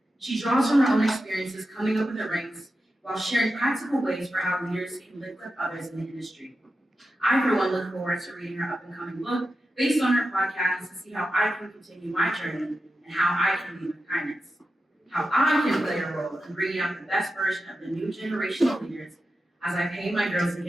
She draws from her own experiences coming up in the ranks while sharing practical ways for how leaders can lift up others in the industry. I, for one, look forward to reading her up-and-coming book based on her podcast to see how I can continue my journey and how I can lead with kindness, how I can play a role in bringing out the best version of the new generation of leaders as I pay my Girls Inc.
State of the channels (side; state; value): both; normal; correlation 0.91